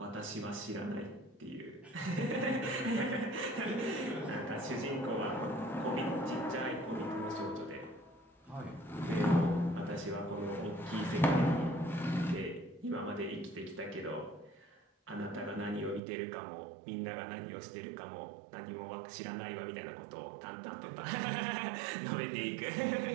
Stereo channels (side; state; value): left; drops out; at 16.0 s